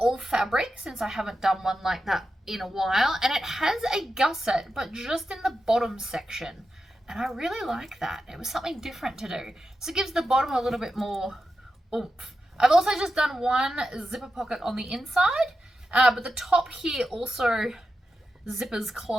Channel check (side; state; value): both; normal; correlation 0.89